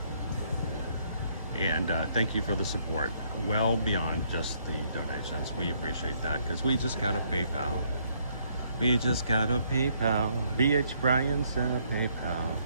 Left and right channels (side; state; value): both; inverted; correlation -0.69